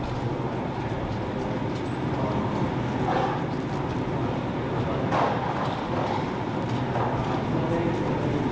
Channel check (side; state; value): both; identical; correlation 1.00